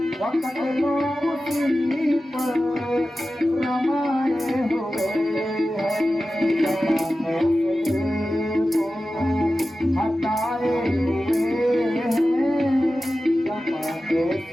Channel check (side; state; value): both; normal; correlation 0.94